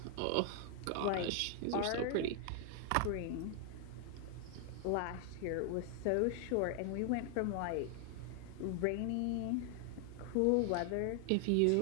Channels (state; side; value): different; both; correlation 0.00